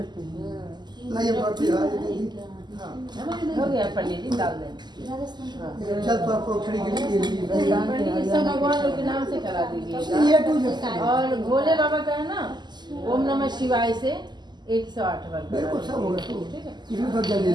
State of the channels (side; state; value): left; late; 0.21 ms